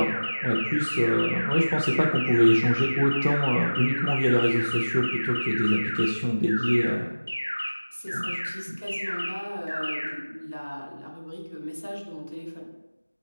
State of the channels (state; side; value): inverted; both; correlation -1.00